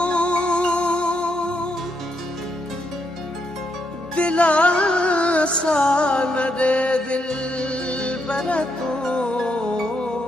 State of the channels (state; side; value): normal; both; correlation 0.79